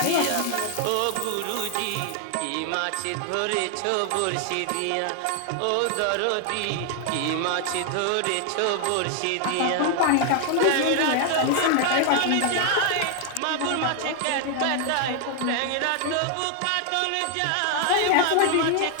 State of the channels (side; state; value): both; different; correlation 0.00